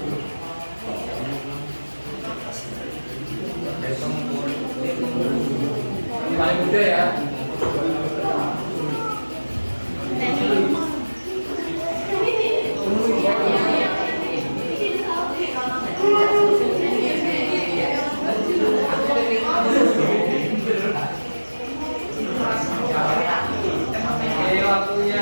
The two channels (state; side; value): inverted; both; correlation -1.00